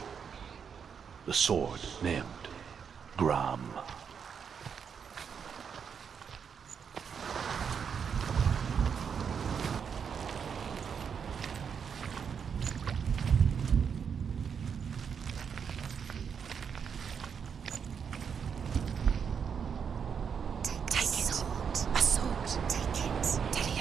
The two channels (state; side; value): quieter; left; 6.9 dB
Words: The sword named Gram.